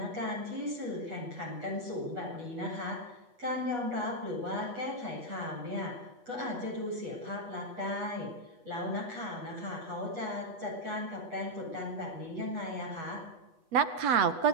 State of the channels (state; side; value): late; left; 8.2 ms